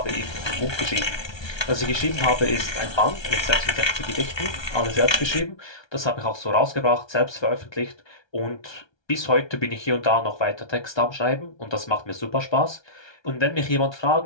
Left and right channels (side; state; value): right; late; 1.3 ms